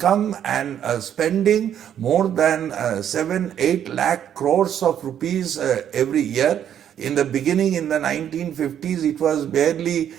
and spending more than 7-8 lakh crores of rupees every year. In the beginning, in the 1950s, it was barely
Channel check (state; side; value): quieter; left; 9.7 dB